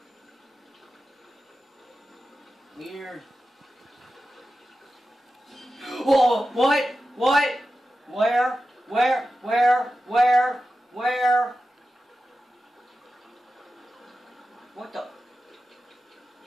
Weird. Whoa! What? What? Where? Where? Where? Where? Where? What the?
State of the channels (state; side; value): normal; both; correlation 0.93